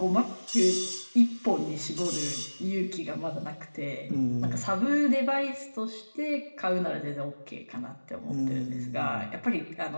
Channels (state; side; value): inverted; both; correlation -1.00